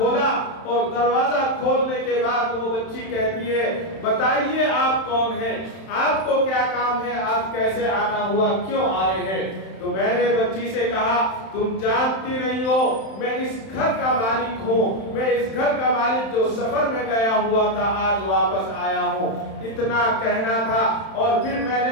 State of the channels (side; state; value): right; late; 31 ms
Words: اور دروازہ کھولنے کے بعد وہ بچی کہتی ہے بتائیے آپ کون ہیں، آپ کو کیا کام ہے، آپ کیسے آنا ہوا، کیوں آئے ہیں؟ تو میں نے بچی سے کہا تم جانتی نہیں ہو میں اس گھر کا مالک ہوں، میں اس گھر کا مالک جو سفر میں گیا ہوا تھا آج واپس آیا ہوں۔ اتنا کہنا تھا اور پھر میں